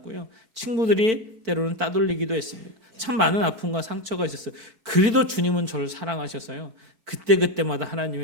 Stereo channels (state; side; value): late; left; 4.5 ms